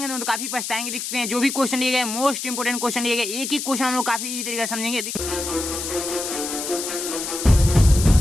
तो काफी पछताएंगे। देखते हैं जो भी क्वेश्चन लिए गए मोस्ट इंपोर्टेंट क्वेश्चन लिए गए, एक एक क्वेश्चन हम लोग काफी इजी तरीके से समझेंगे।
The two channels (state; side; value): noise; left; hiss, 5 dB below the sound